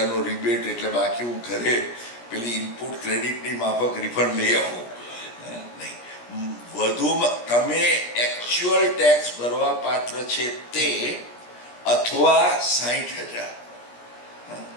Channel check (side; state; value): right; late; 17 ms